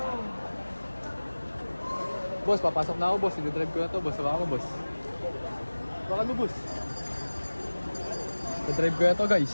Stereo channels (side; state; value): both; inverted; correlation -1.00